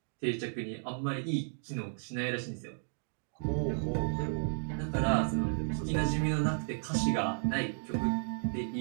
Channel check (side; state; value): left; silent; digital silence